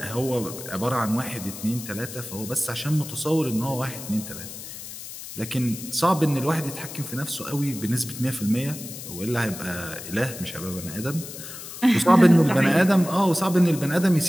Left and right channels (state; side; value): noise; left; hiss, 11 dB below the sound